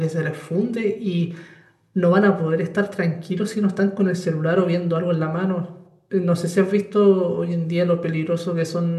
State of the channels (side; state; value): both; identical; correlation 1.00